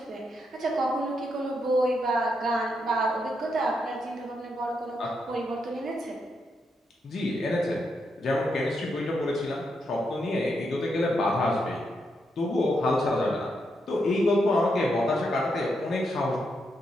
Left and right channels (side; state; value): both; normal; correlation 0.81